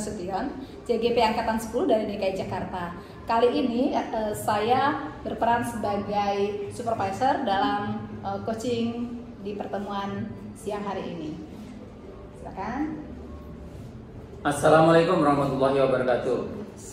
CGP Angkatan 10 dari DKI Jakarta. Kali ini saya berperan sebagai supervisor dalam coaching di pertemuan siang hari ini. Silakan. Assalamualaikum warahmatullahi wabarakatuh.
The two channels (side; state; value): both; identical; correlation 1.00